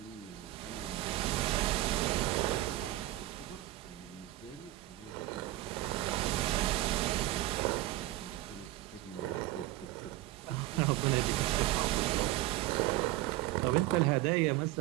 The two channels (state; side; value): quieter; left; 16.7 dB